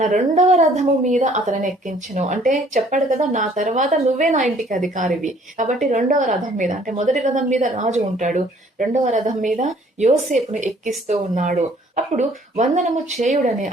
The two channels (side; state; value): both; normal; correlation 0.58